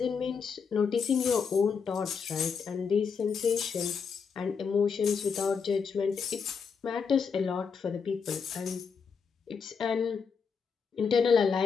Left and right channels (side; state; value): right; quieter; 5.9 dB